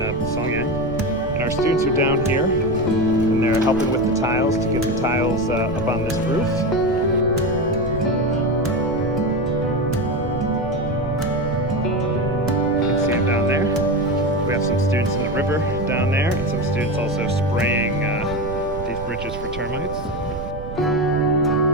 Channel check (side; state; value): right; noise; rumble, 9 dB below the sound